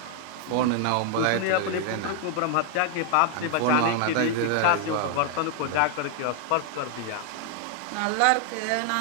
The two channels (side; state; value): both; different; correlation 0.00